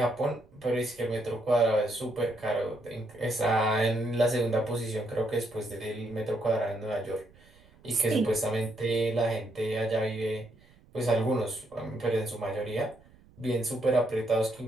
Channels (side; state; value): right; noise; rumble, 27 dB below the sound